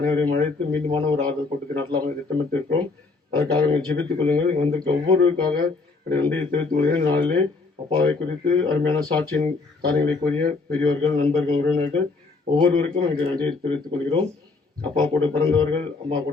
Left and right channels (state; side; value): quieter; right; 3.9 dB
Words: அழைத்து மீண்டுமான ஒரு ஆறுதல் கூட்டத்தை நடத்தலாம் திட்டமிட்டிருக்கிறோம். அதற்காக ஜெபித்துக் கொள்ளுங்கள். வந்திருக்க ஒவ்வொருவருக்காக நன்றியை தெரிவித்துக் கொள்கிறேன். நாளிலே அப்பாவை குறித்து அருமையான சாட்சியின் காரியங்களை கூறிய பெரியவர்கள், நண்பர்கள், உறவினர்கள் ஒவ்வொருவருக்கும் எனக்கு நன்றியை தெரிவித்துக் கொள்கிறோம். அப்பா கூட பிறந்தவர்கள், அம்மா